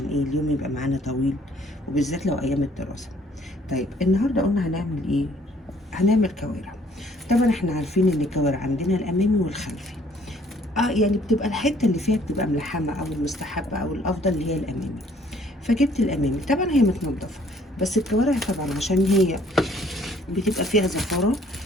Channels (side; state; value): both; normal; correlation 0.60